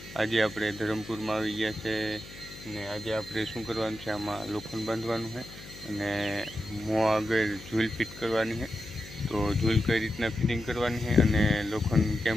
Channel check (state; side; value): noise; left; hum, 16 dB below the sound